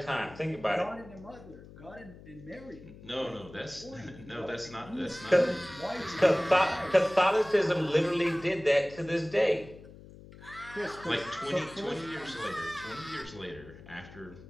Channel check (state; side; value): noise; left; hum, 18 dB below the sound